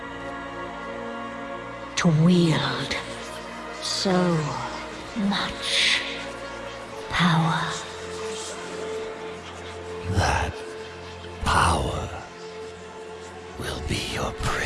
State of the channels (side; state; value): both; identical; correlation 1.00